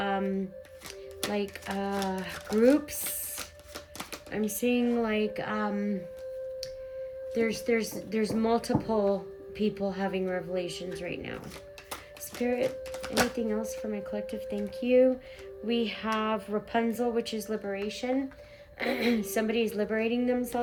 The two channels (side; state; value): both; identical; correlation 1.00